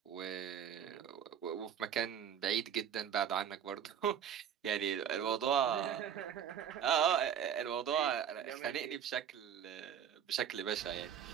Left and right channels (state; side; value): quieter; left; 8.7 dB